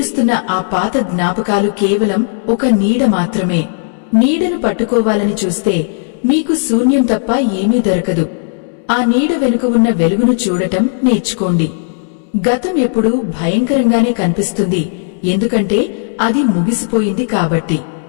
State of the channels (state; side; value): silent; right; digital silence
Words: ఆ పాత జ్ఞాపకాలు కేవలం ఒక నీడ మాత్రమే. నీడను పట్టుకోవాలని చూస్తే మీకు శూన్యం తప్ప ఏమీ దొరకదు. ఆ నీడ వెనుక ఉన్న వెలుగును చూడటం నేర్చుకోండి. గతం ఎప్పుడూ భయంకరంగానే కనిపిస్తుంది, ఎందుకంటే అది ముగిసిపోయింది కాబట్టి.